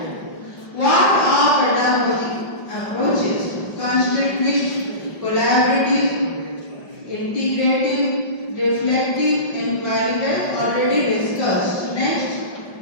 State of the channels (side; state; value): right; late; 5.3 ms